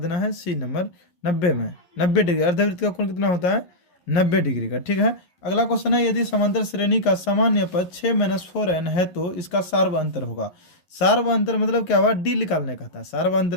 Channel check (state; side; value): late; right; 11 ms